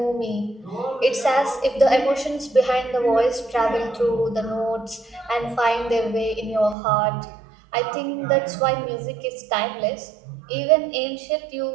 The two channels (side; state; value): left; drops out; at 6.8 s